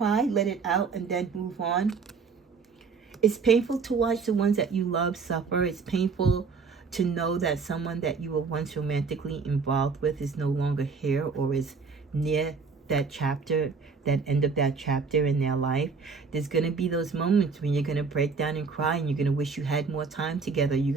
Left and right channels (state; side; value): quieter; left; 5.1 dB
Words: let it out, and then move on. It's painful to watch the ones that you love suffer. It's painful to know that someone that you were once romantically involved with is no longer here, or is near that chapter, that end of that chapter in their life. There's going to be those moments when you're going to break down and cry, and you're going to wish you had more time together. You're